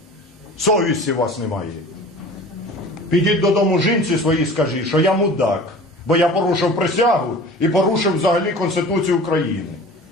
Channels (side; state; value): both; normal; correlation 0.41